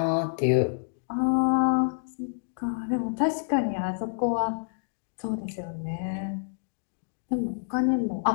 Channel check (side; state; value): right; silent; digital silence